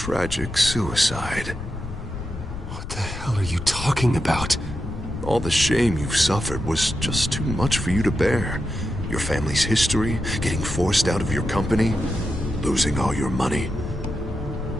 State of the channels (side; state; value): left; noise; rumble, 9 dB below the sound